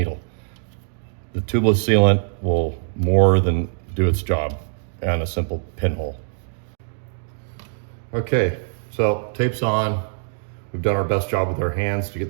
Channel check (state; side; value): silent; left; digital silence